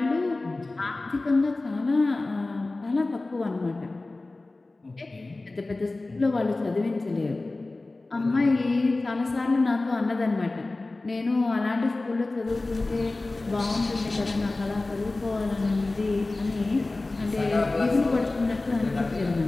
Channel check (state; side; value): quieter; right; 3.1 dB